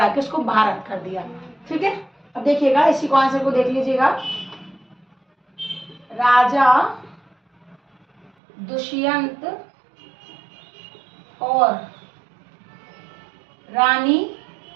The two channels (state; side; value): drops out; left; at 8.3 s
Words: के उसको भारत कर दिया, ठीक है। अब देखिएगा, इसी को आंसर को देख लीजिएगा। राजा दुष्यंत और रानी,